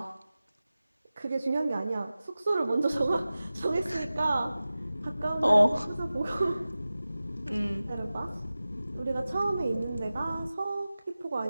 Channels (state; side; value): inverted; both; correlation -0.96